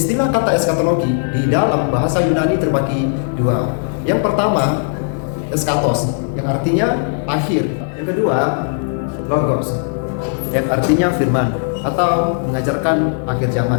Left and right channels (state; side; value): silent; right; 68 dB below the other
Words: kata eskatologi di dalam bahasa Yunani terbagi dua. Yang pertama, eskatos, yang artinya akhir. Yang kedua, logos, yang artinya firman atau mengajarkan akhir